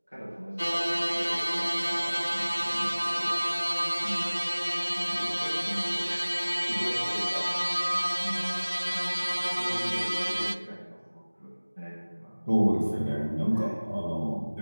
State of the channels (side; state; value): both; inverted; correlation -1.00